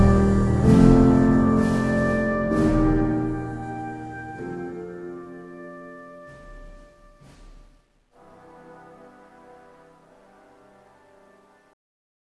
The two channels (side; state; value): both; identical; correlation 1.00